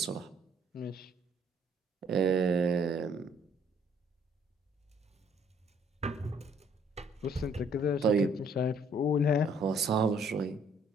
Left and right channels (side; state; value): both; normal; correlation 0.62